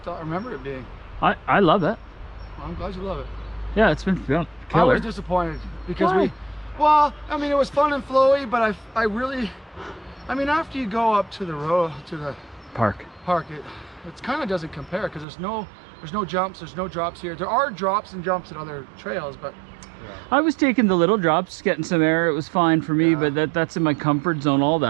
remember it being. I love it. Well, I'm glad you love it. Yeah, it's been killer. I was disappointed because Why? well, I mean, it was fun and flowy, but I really, I mean, after you go up to the Park. it kind of doesn't compare because there's no jumps, there's no drops here. There are drops and jumps at other trails, but I was taking the little drops, getting some air. It was fine for me, but that's in my comfort zone, all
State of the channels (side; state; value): left; drops out; at 15.2 s